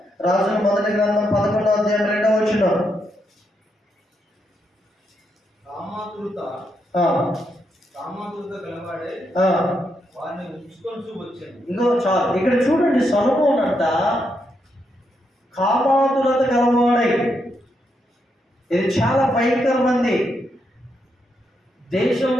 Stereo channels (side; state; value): both; normal; correlation 0.81